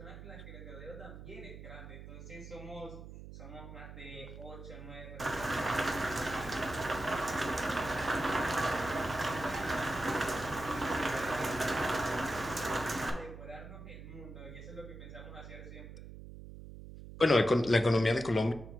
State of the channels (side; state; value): right; noise; hum, 13 dB below the sound